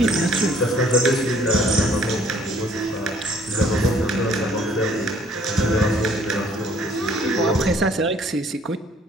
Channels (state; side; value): normal; both; correlation 0.60